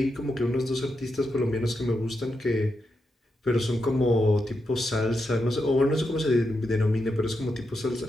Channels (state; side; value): normal; both; correlation 0.85